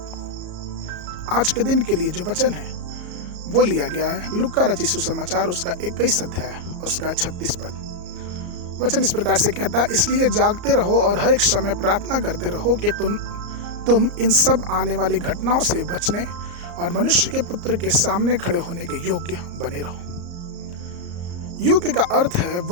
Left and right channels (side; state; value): left; late; 34 ms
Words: आज के दिन के लिए जो वचन है वो लिया गया है लूका रचित सुसमाचार उसका 21 अध्याय उसका 36 पद। वचन इस प्रकार से कहता है, इसलिए जागते रहो और हर एक समय प्रार्थना करते रहो कि तुम इन सब आने वाली घटनाओं से बचने और मनुष्य के पुत्र के सामने खड़े होने के योग्य बने रहो। योग्य का अर्थ है